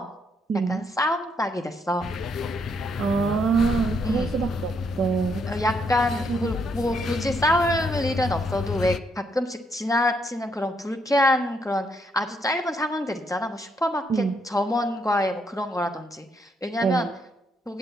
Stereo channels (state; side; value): normal; both; correlation 0.74